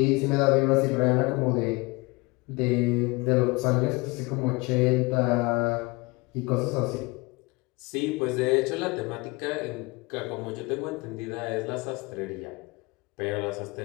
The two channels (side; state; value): right; quieter; 25.2 dB